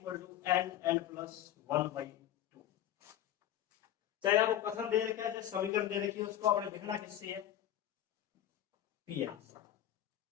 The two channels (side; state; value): right; quieter; 12.0 dB